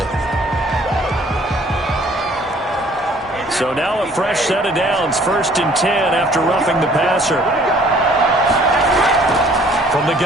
So now a fresh set of downs, 1st and 10 after roughing the passer. From the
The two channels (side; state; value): both; normal; correlation 0.57